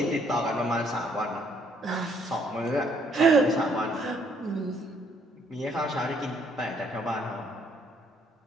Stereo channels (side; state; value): both; normal; correlation 0.67